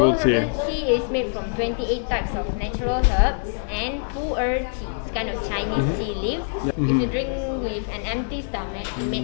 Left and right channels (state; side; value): silent; right; digital silence